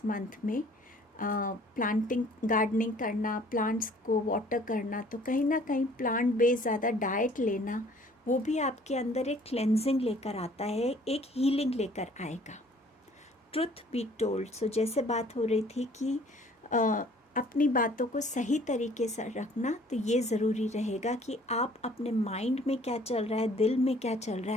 मंथ में। प्लांटिंग, गार्डनिंग करना, प्लांट्स को वाटर करना, तो कहीं ना कहीं प्लांट बेस्ड ज़्यादा डाइट लेना, वो भी आपके अंदर एक क्लेंजिंग लेकर आता है, एक हीलिंग लेकर आएगा। Truth be told. सो जैसे बात हो रही थी कि अपनी बातों को सही तरीके से रखना, तो ये ज़रूरी रहेगा कि आप अपने माइंड में क्या चल रहा है, दिल में क्या चल रहा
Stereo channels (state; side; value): normal; both; correlation 0.55